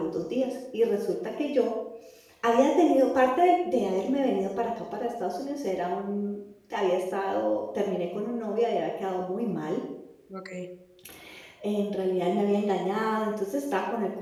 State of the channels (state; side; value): identical; both; correlation 1.00